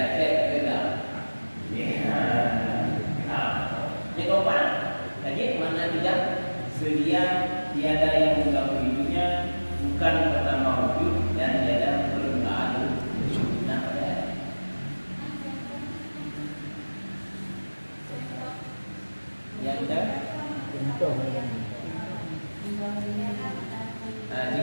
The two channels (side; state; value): both; inverted; correlation -1.00